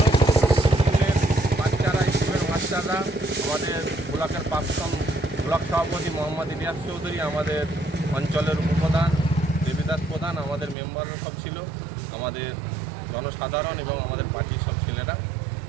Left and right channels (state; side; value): drops out; left; at 10.8 s